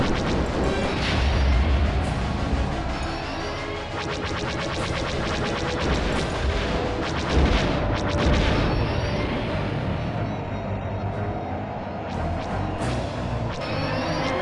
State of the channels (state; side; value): identical; both; correlation 1.00